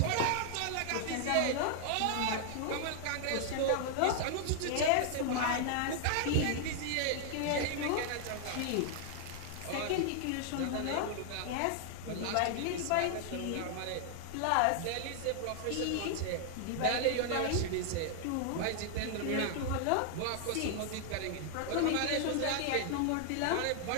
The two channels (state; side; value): different; both; correlation 0.00